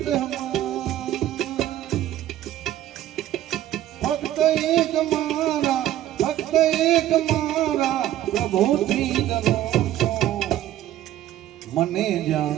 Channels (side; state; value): left; quieter; 13.1 dB